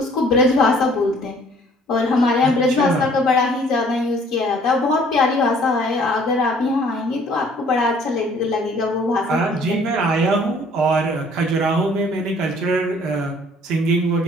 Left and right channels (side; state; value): both; normal; correlation 0.57